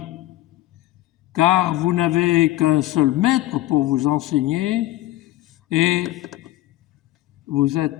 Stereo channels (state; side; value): quieter; right; 15.9 dB